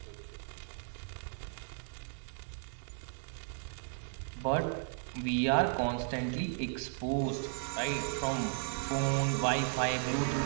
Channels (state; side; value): silent; left; 54 dB below the other